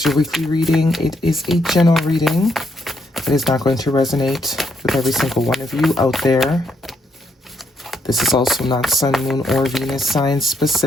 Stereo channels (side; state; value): both; normal; correlation 0.75